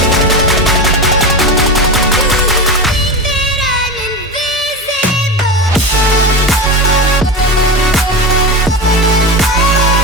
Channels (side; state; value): both; normal; correlation 0.22